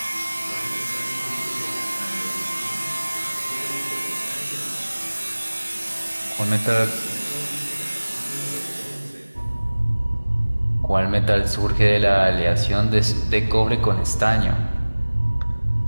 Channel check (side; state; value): both; inverted; correlation -1.00